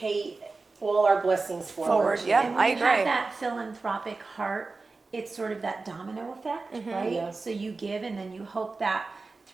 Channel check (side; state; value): left; quieter; 3.8 dB